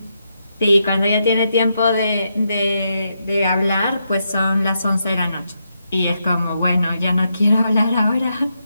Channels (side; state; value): both; inverted; correlation -0.82